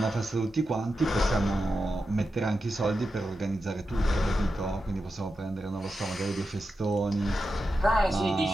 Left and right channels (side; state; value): both; normal; correlation 0.89